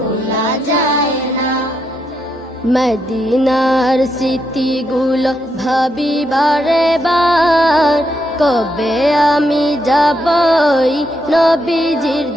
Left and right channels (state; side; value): normal; both; correlation 0.80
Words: যায় না। মদিনার স্মৃতিগুলো ভাবি বারে বার, কবে আমি যাবই নবীজির